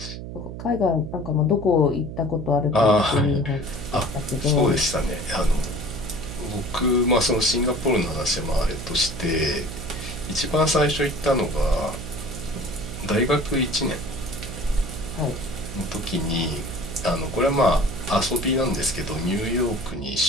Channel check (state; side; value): noise; right; hum, 9 dB below the sound